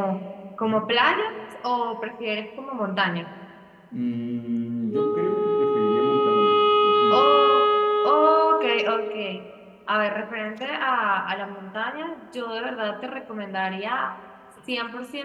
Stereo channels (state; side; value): identical; both; correlation 1.00